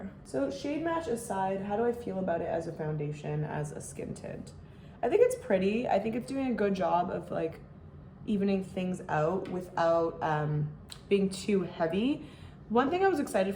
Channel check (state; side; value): identical; both; correlation 1.00